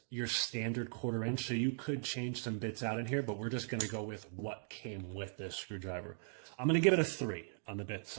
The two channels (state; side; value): silent; left; digital silence